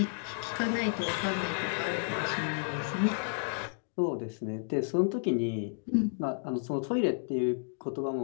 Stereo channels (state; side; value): silent; right; digital silence